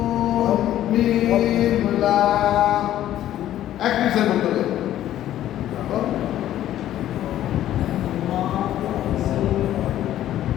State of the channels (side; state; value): right; quieter; 12.5 dB